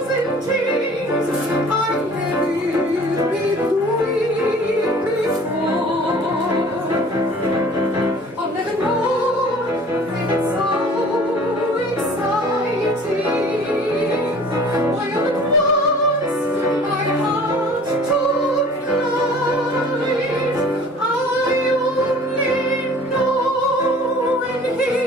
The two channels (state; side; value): normal; both; correlation 0.48